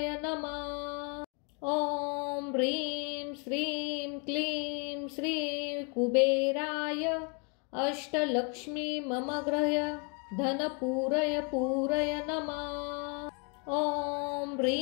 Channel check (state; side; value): quieter; right; 35.8 dB